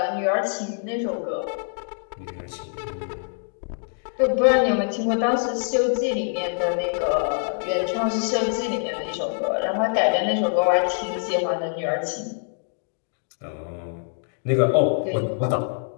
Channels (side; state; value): right; silent; digital silence